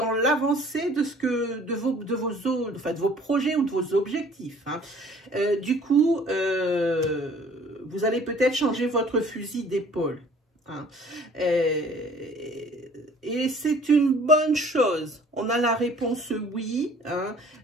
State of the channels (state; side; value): normal; both; correlation 0.53